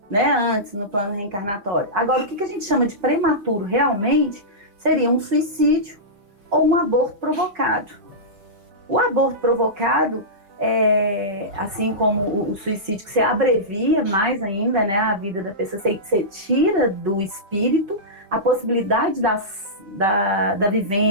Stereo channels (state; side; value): late; left; 5.2 ms